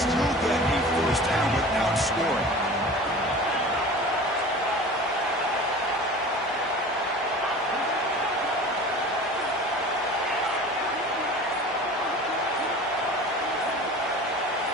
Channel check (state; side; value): normal; both; correlation 0.39